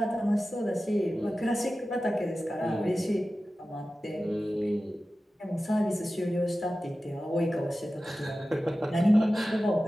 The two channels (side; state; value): both; normal; correlation 0.95